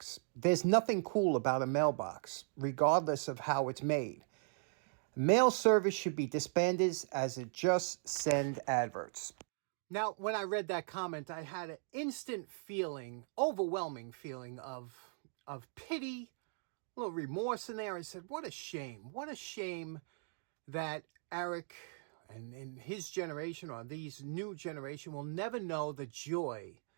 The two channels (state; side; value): silent; left; digital silence